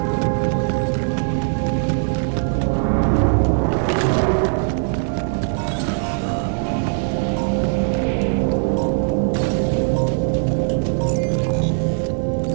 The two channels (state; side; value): silent; left; 59 dB below the other